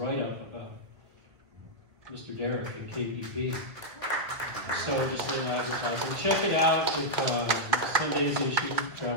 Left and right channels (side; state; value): left; late; 1.7 ms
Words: about Mr. Derek at KPP. So just a little advertising. Check it out with Sunday's issue,